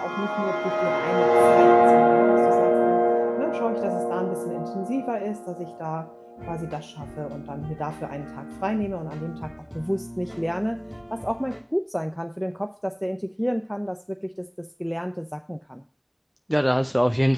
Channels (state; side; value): identical; both; correlation 1.00